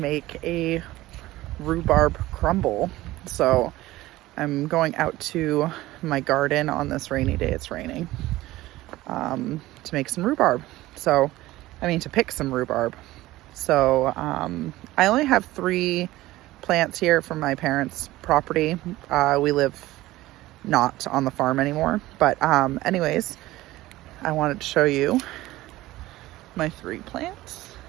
a rhubarb crumble. So I'm going out to my garden on this rainy day. It's raining. To make some rhubarb. To pick some rhubarb. So I only have 3 plants here from my parents' property. We live not on the farm anymore. But anyways, I wanted to show you my 3 plants.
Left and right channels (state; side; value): quieter; left; 17.2 dB